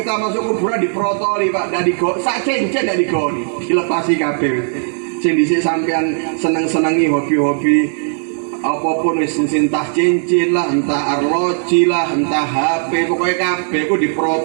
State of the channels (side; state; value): left; silent; 68 dB below the other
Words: masuk kuburan diprotoli, Pak, dari go sak cincin dari digoni, dilepasi kabeh. Sing dhisik sampean seneng-senengi hobi-hobi apapun wis entah cincin lah, entah arloji lah, entah HP, pokoknya kabeh ku